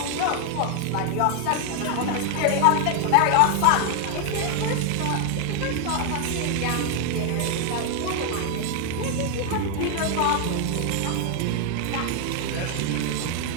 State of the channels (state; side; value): different; both; correlation 0.00